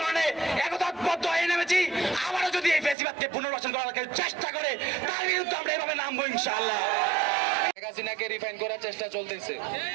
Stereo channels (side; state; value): left; drops out; at 3.0 s